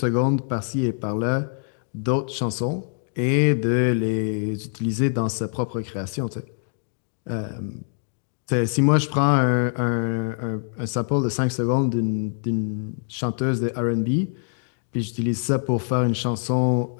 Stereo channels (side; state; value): right; silent; digital silence